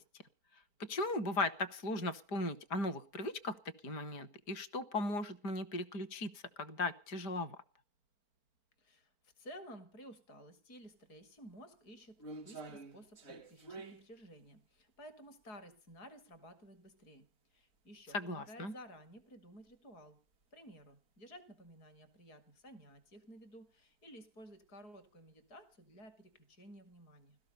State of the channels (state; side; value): late; right; 4.4 ms